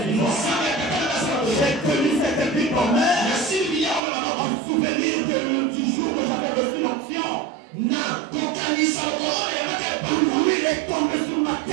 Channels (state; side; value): drops out; left; at 4.0 s